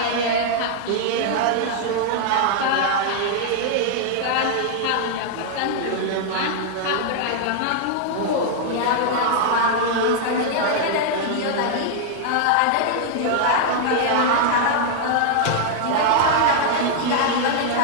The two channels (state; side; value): different; both; correlation -0.01